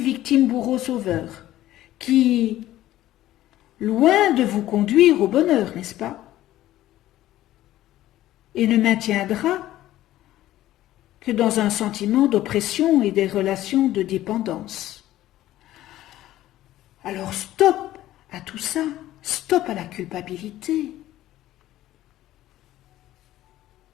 qui, loin de vous conduire au bonheur, n'est-ce pas, et ne maintiendra que dans un sentiment d'oppression et des relations de dépendance. Alors stop à tout ça, stop à la culpabilité.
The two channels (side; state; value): right; quieter; 14.4 dB